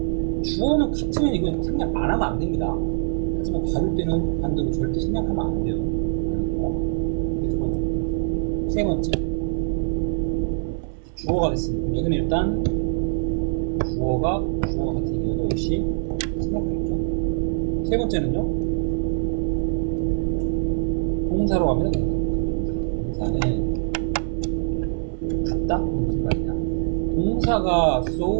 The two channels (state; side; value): silent; left; digital silence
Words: 주어는 같으면 이건 생략 안 하면 안 됩니다. 하지만 다룰 때는 반대로 절대 생략하면 안 돼요 라는 거. 이게 두 번째. 세 번째, 이제 주어가 됐으니 그럼 여기는 일단 주어가 같으니까 이것도 역시 생략하겠죠. 세 번째는요, 동사로 갑니다. 동사로. 이제 동사는 같다? 이게 무슨 말이냐? 동사가